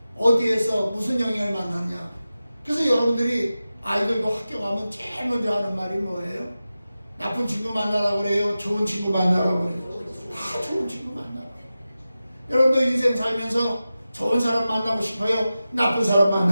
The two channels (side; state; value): both; inverted; correlation -0.94